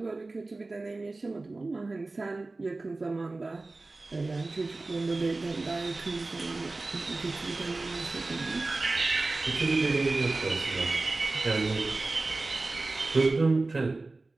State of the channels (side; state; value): left; quieter; 3.3 dB